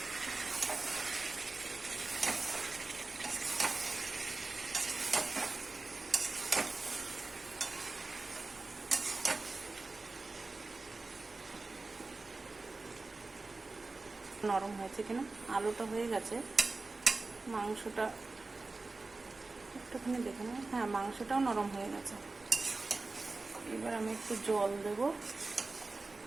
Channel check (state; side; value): quieter; left; 3.5 dB